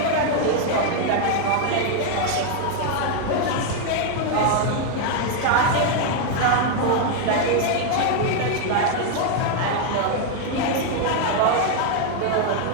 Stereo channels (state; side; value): different; both; correlation 0.00